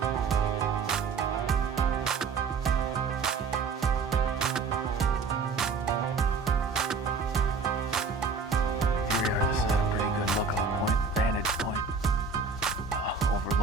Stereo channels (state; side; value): quieter; left; 4.7 dB